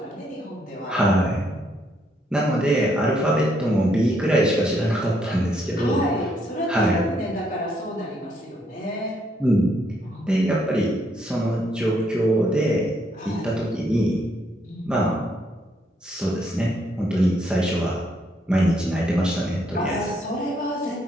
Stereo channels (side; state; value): both; normal; correlation 0.73